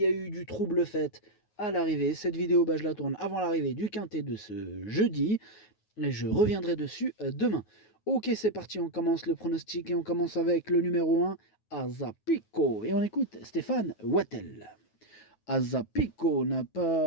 a eu du trouble fait à l'arrivée. Cette vidéo, je la tourne avant l'arrivée du quintet de ce jeudi. Et je reviendrai dessus demain. Ok, c'est parti, on commence le pronostic et on commence avec le numéro 1, Azapico. Et on écoute Stéphane Wattel. Azapico n'a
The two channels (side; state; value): right; late; 9.5 ms